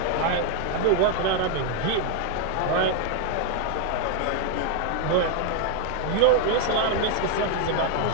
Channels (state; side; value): different; both; correlation 0.00